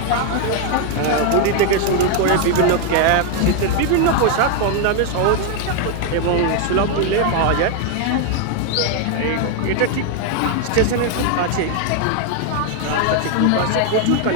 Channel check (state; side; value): different; both; correlation 0.01